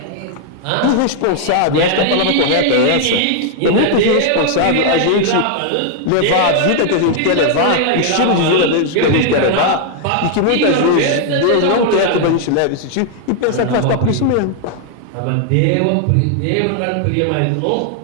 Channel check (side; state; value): both; different; correlation 0.00